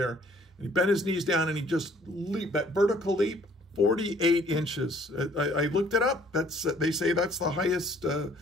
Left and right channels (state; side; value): normal; both; correlation 0.59